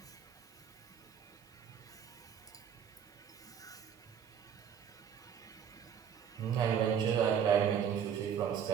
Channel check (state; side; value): quieter; left; 8.3 dB